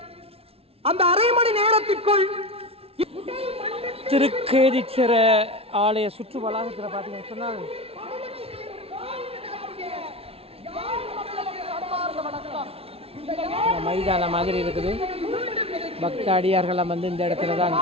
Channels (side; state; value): left; late; 0.28 ms